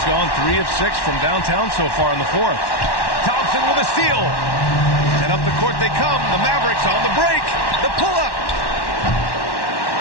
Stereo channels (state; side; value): late; right; 1.1 ms